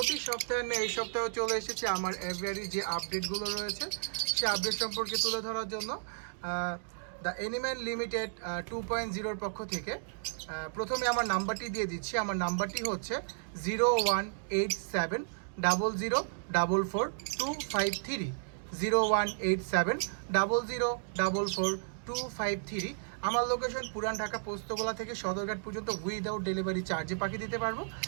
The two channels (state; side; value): silent; left; digital silence